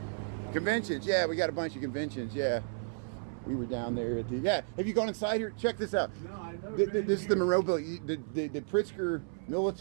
conventions. Yeah, we got a bunch of conventions. Yeah, we were down there at the. Yeah, have you gone inside here? Check this out. No, I've never been This is the Monroe Building. The Pritzker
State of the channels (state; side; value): silent; left; 56 dB below the other